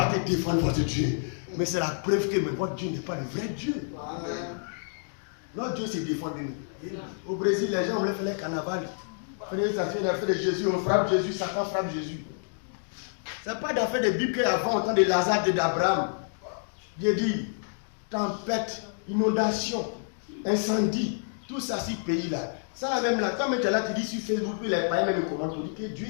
défendre votre Dieu. Mais c'est la preuve que votre Dieu n'est pas le vrai Dieu. Notre Dieu s'est défendu. Au Brésil, les gens voulaient faire les carnaval. Ça fait l'affaire de Jésus, on frappe Jésus, Satan frappe Jésus. Ce n'est pas d'affaire de Bible qu'avant, au temps de Lazare et d'Abraham. Dieu dit, tempête, inondation, incendie, tout ça, ces pays-là, Ça même là, quand tu es là, tu dis sur Facebook, puis les païens même commentent, tu dis que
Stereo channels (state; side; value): silent; right; digital silence